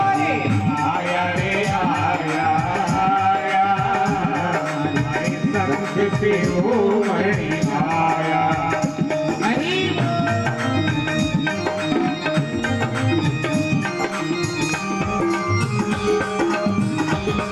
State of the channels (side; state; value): both; identical; correlation 1.00